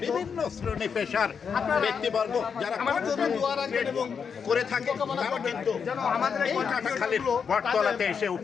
বিভিন্ন শ্রেণী পেশার ব্যক্তিবর্গ যারা করে থাকে তারা কিন্তু এই কাটাখালীর বটতলাতে এসে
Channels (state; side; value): quieter; right; 6.4 dB